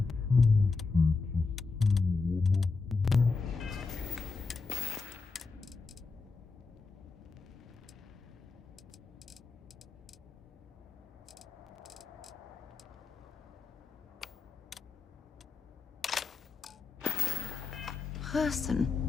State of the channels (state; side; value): quieter; right; 4.3 dB